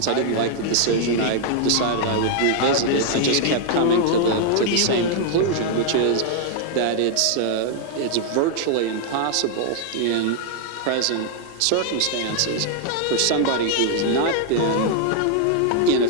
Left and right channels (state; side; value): different; both; correlation 0.00